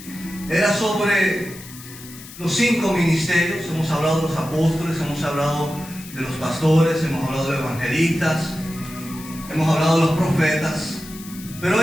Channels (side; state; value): left; noise; hiss, 16 dB below the sound